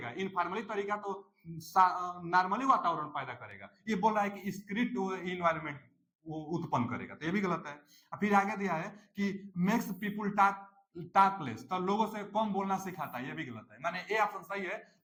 इनफॉर्मली तरीका तो नॉर्मली वातावरण पैदा करेगा। ये बोल रहा है कि स्ट्रिक्ट इन्वायरमेंट वो उत्पन्न करेगा, तो ये भी गलत है। फिर आगे दिया है कि मेक्स पीपुल टॉक लेस, तो लोगों से कम बोलना सिखाता है, ये भी गलत है। माने ए ऑप्शन सही है।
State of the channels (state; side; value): identical; both; correlation 1.00